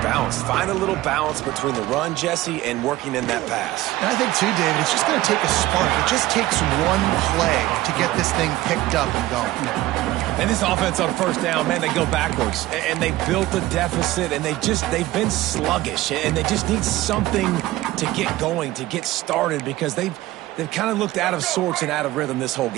balanced. Find a little balance between the run, Jesse, and working in that pass. And I think, too, David, it's just going to take a spark. It just takes one play to get this thing picked up and going. And this offense on first down, man, they go backwards. And they built a deficit, and they've been sluggish. And they just need something to get going, to get started, because they've kind of looked out of sorts and out of rhythm this whole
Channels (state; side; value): quieter; left; 16.8 dB